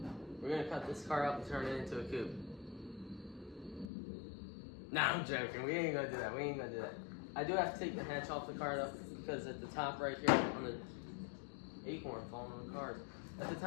We're gonna cut this car up and turn it into a coupe. Nah, I'm joking. We ain't gonna do that. I do have to take the hatch off the car though because at the top right here on the acorn falling on the cars. At the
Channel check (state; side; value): drops out; right; at 3.9 s